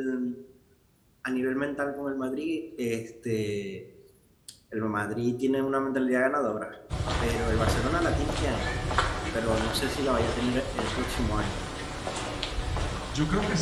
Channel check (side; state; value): both; identical; correlation 1.00